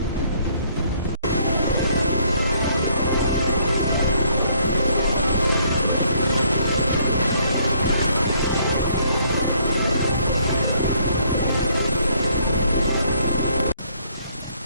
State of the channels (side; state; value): both; inverted; correlation -0.66